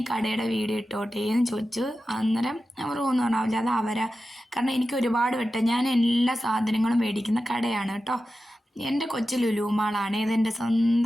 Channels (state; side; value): normal; both; correlation 0.92